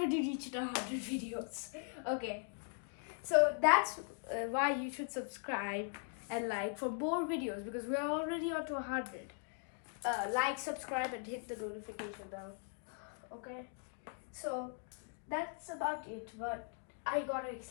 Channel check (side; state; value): right; silent; 51 dB below the other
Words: reached 100 videos. Okay, so that's why you should subscribe and like for more videos because we are already on to 100. Like, subscribe, and hit the notification bell. Okay, so that's about it. But I gotta